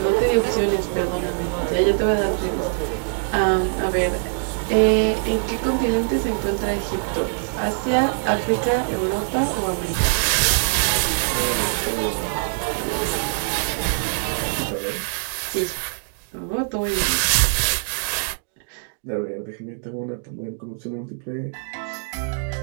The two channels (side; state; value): left; silent; digital silence